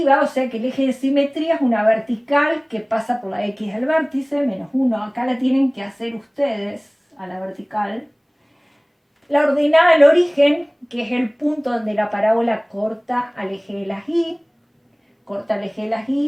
o sea que el eje de simetría es una vertical que pasa por la X del vértice, menos 1. Acá la tienen que hacer ustedes, a la vertical. La ordenada al origen, que es el punto donde la parábola corta al eje de las Y, corta el eje de las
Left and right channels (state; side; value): identical; both; correlation 1.00